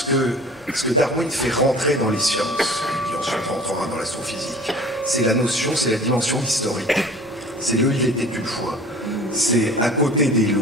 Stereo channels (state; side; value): normal; both; correlation 0.44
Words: que Darwin fait rentrer dans les sciences, qui ensuite rentrera dans l'astrophysique. C'est la notion, c'est la dimension historique. C'est le « il était une fois ». C'est à côté des